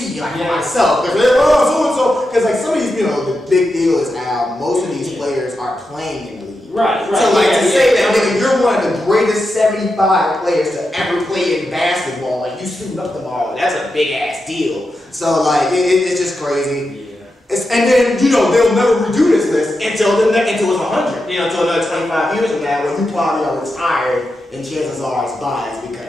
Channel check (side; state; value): both; normal; correlation 0.88